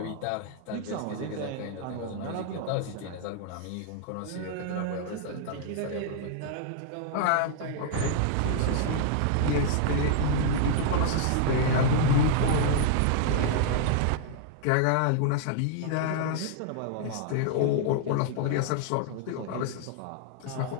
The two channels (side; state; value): both; different; correlation -0.01